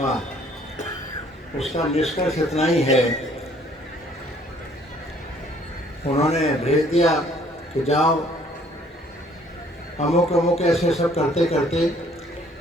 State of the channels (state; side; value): normal; both; correlation 0.60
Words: उसका निष्कर्ष इतना ही है, उन्होंने भेज दिया कि जाओ अमुक अमुक ऐसे सब करते करते,